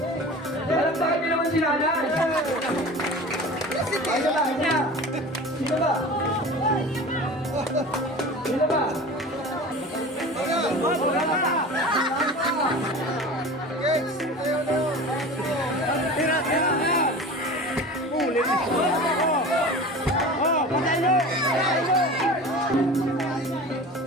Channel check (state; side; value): normal; both; correlation 0.36